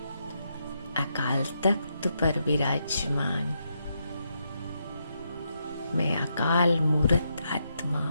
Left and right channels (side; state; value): both; inverted; correlation -0.81